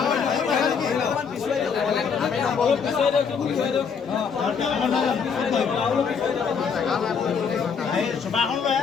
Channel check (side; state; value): right; quieter; 6.2 dB